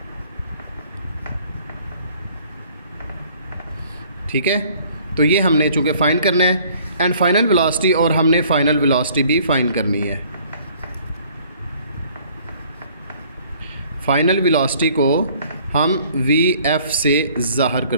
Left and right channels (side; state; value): both; inverted; correlation -0.57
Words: ठीक है। तो ये हमने चूँकि फाइंड करना है एंड फाइनल वेलोसिटी, और हमने फाइनल वेलोसिटी भी फाइंड करनी है। फाइनल वेलोसिटी को हम VF से ज़ाहिर